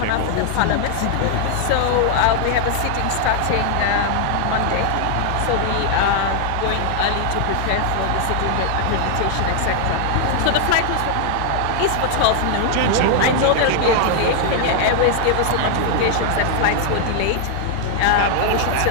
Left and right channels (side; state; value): both; different; correlation 0.00